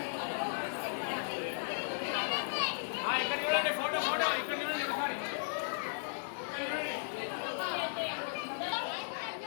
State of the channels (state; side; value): silent; right; digital silence